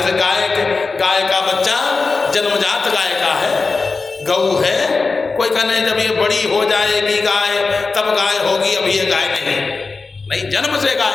गाय का बच्चा जन्मजात गाय का है, गऊ है, कोई कहने जब ये बड़ी हो जाएगी गाय तब गाय होगी, अभी ये गाय नहीं, जन्म से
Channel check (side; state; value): right; quieter; 4.1 dB